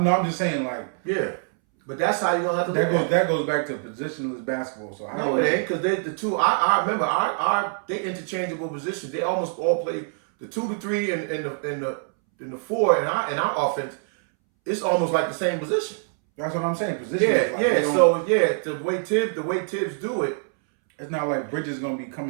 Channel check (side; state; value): left; silent; 62 dB below the other